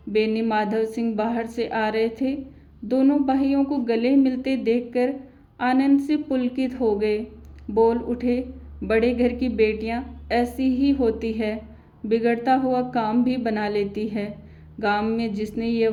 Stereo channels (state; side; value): identical; both; correlation 1.00